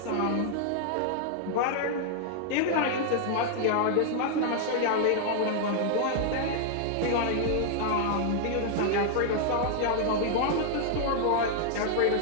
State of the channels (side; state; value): both; different; correlation -0.01